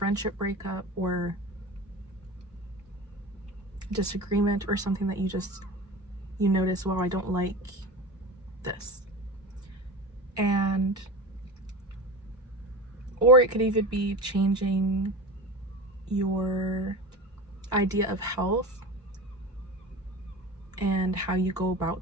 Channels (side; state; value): both; normal; correlation 0.30